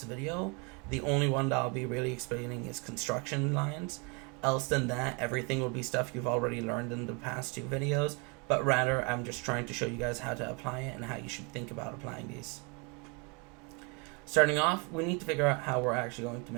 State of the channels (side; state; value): left; quieter; 32.1 dB